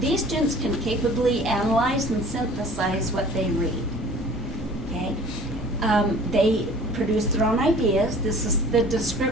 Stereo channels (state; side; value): normal; both; correlation 0.47